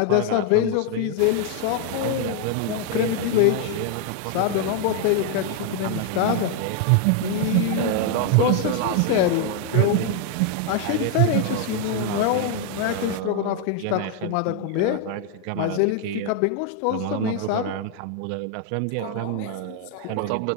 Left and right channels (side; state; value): both; different; correlation 0.00